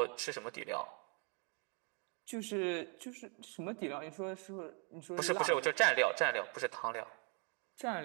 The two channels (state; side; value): quieter; left; 36.5 dB